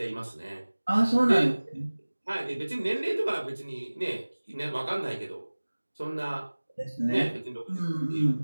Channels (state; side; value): inverted; both; correlation -1.00